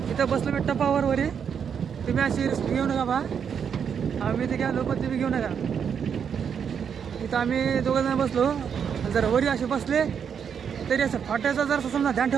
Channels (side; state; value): left; quieter; 7.4 dB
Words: इथं बसलो मी टपावर वरी. तुम्ही अशी रिस्क घेऊ नका बा. आम्ही इथे घ्या लोक तुम्ही घेऊ नका. इथं आम्ही दोघं जण बसलो. जर वरी असे बसले तरी असं फाट्याचा जर समजा ध्यान